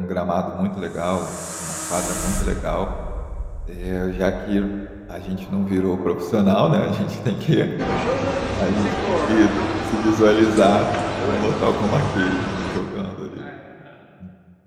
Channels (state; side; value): identical; both; correlation 1.00